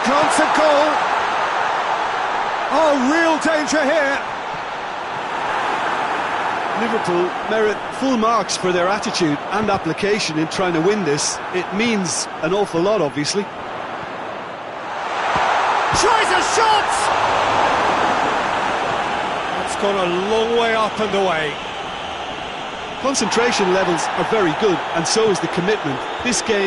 glance at goal. Oh, real danger here. Liverpool merit full marks for their attitude and application in trying to win this. It means an awful lot, obviously. Tries a shot! That's gone a long way up and away. Concentration levels are very good, and so is the commitment. This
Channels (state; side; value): identical; both; correlation 1.00